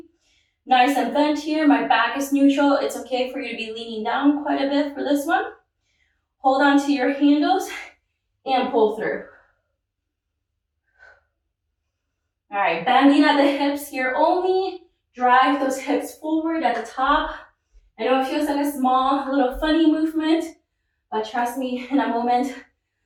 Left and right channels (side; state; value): both; identical; correlation 1.00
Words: Nice and bent here, my back is neutral. It's okay for you to be leaning down quite a bit for this one. Hold on to your handles and pull through. All right, bending at the hips here only. Drive those hips forward at the top. I know it feels like a small, little funny movement, but trust me, in a moment,